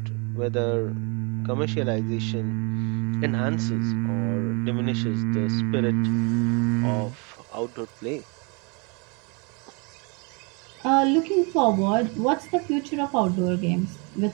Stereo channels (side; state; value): left; quieter; 32.3 dB